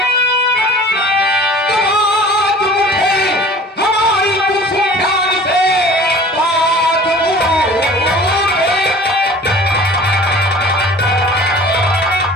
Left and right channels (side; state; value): both; normal; correlation 0.45